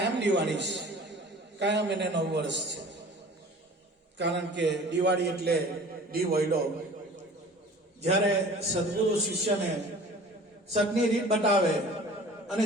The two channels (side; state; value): both; normal; correlation 0.44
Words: દિવાળી છે, કાયમ એને નવ વર્ષ છે. કારણ કે દિવાળી એટલે વૈડો. જ્યારે સદગુરુ શિષ્યને સતની રીત બતાવે, અને